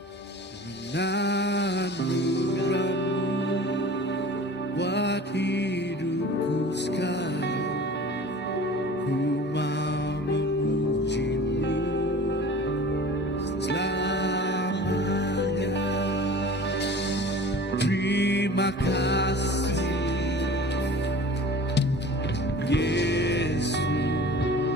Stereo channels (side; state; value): both; normal; correlation 0.41